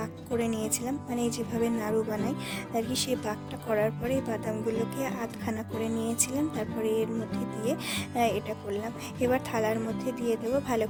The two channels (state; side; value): identical; both; correlation 1.00